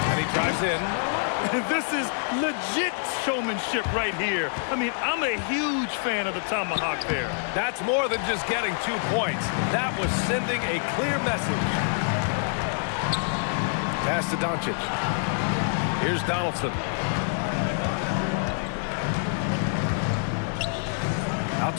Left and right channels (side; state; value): right; silent; digital silence